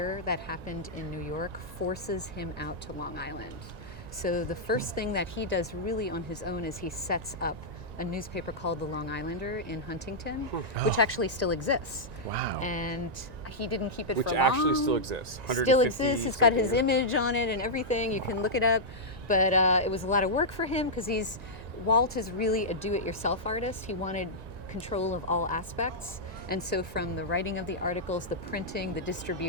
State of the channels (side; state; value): left; late; 1.9 ms